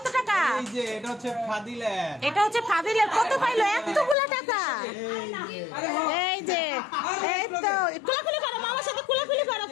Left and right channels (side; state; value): right; drops out; at 4.2 s